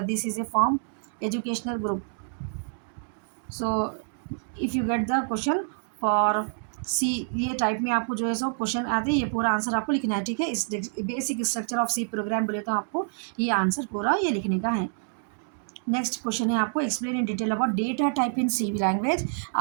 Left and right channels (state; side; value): silent; left; digital silence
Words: this is a form educational group. So if you get the question for C, ये टाइप में आपको जो है सो क्वेश्चन आते हैं, ये पूरा आंसर आपको लिखना है। ठीक है, इस basic structure of C program बोले तो आपको ये आंसर पूरा ये लिखने का है। नेक्स्ट क्वेश्चन है आपको explain in detail about data type in C language.